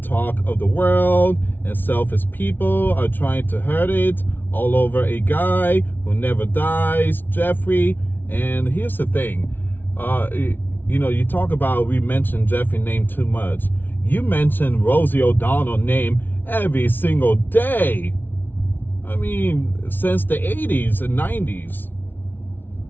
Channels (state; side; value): late; right; 0.092 ms